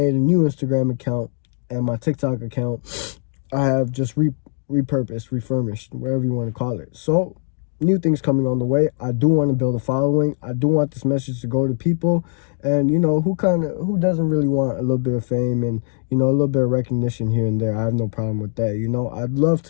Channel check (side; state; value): right; silent; digital silence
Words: a new Instagram account, and my TikTok account I have just repurposed, refurbished, whatever you want to call it. So new things coming on the way. I do want to build a following. I do want this message to go to people, and you know, who doesn't really want a little bit of fame and, you know, a little bit of recognition here and there. I have no problem with that. You know, I'd love